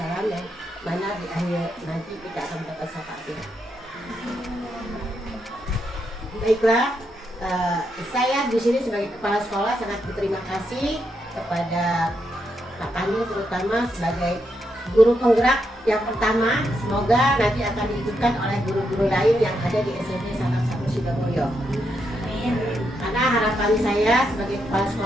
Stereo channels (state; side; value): normal; both; correlation 0.81